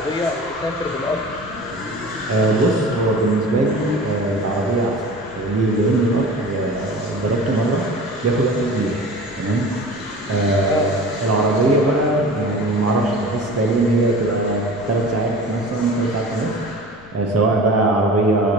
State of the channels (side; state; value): left; noise; rumble, 25 dB below the sound